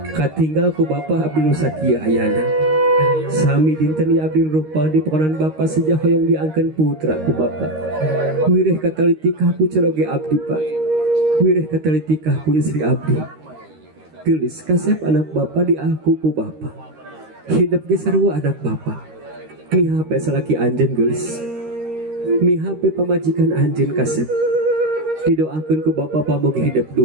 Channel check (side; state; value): left; late; 13 ms